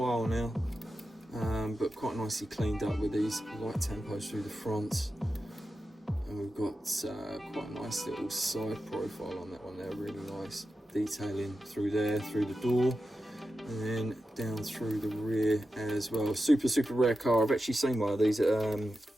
now, but quite nicely cleaned up with these light tempos through the front. And we've got quite a nice little side profile on that one there, really nice detailing through there, through the door. and then down through the rear as well. Super rare car. I've actually seen one of these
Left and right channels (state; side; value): normal; both; correlation 0.91